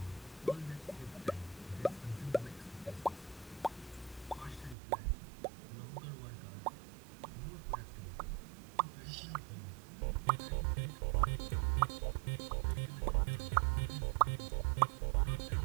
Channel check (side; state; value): left; drops out; at 4.8 s